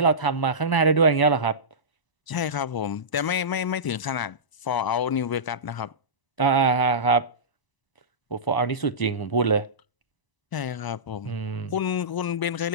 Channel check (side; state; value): right; late; 1.0 ms